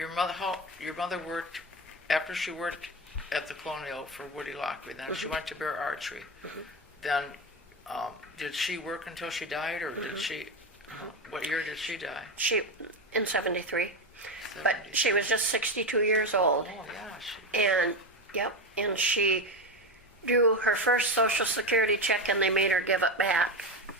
mother worked after she worked at the Colonial for Woody Lockery. Then she went to Bear Archery. Then, did she work until she died, or did she? What year did she die? She, in 73. But she was just 62 years old. Oh yeah, And, yep, and she drew her first Social Security check and they made her give it back.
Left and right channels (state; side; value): normal; both; correlation 0.16